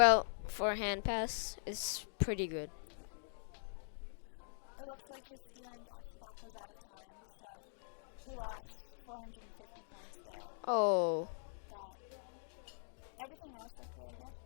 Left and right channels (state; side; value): silent; right; digital silence